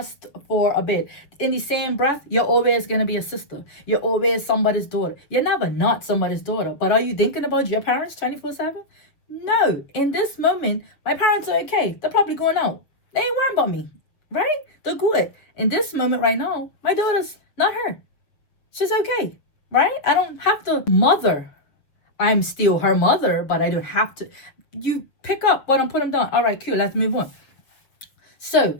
for a bit. In the same breath, you're always going to be a sister. You're always somebody's daughter. You're never not somebody's daughter. But are you thinking about your parents 24/7? No. In this moment, my parents are okay. They're probably going out. They ain't worrying about me, right? They're good. In this moment right now, my daughter's not her. She's okay, right? I don't have to mother. I'm still her mother, but I don't have to. You pick up what I'm putting down. All right, cool. Let's move on. So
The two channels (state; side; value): late; right; 6.8 ms